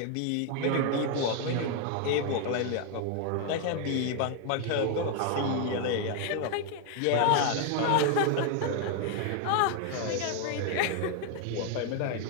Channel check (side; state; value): both; different; correlation 0.00